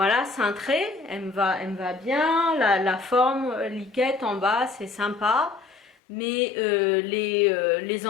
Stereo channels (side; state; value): right; drops out; at 5.9 s